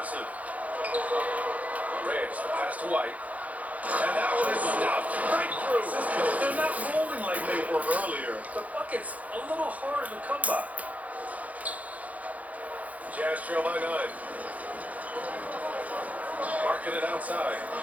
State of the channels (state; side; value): late; left; 0.072 ms